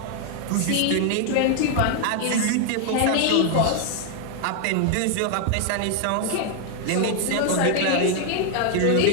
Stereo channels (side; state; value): both; different; correlation 0.00